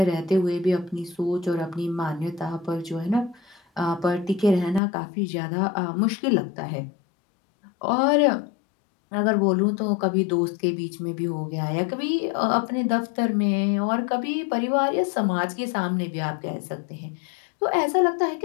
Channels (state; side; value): drops out; right; at 4.8 s